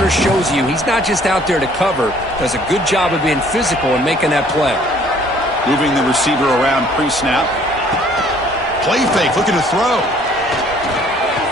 shows you he's not just out there to cover, does a good job of being physical and making that play. Moving the receiver around pre-snap. Play fake, looking to throw.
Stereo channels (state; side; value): normal; both; correlation 0.58